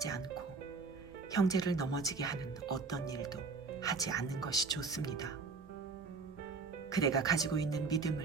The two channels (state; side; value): quieter; left; 4.4 dB